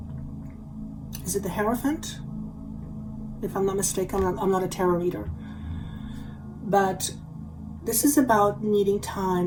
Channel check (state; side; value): identical; both; correlation 1.00